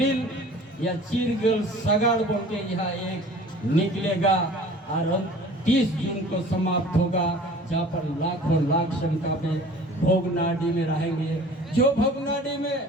या चीरगल सगाड़ बोल के यहाँ एक निकलेगा और 30 जून को समाप्त होगा, जहाँ पर लाखों लाख संख्या में भोगनाडी में रहेंगे। जो भोगनाडी में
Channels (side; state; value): both; normal; correlation 0.46